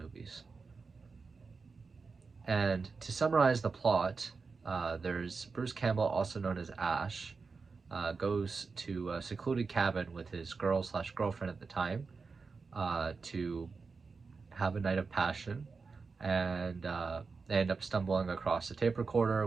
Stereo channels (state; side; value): quieter; left; 4.6 dB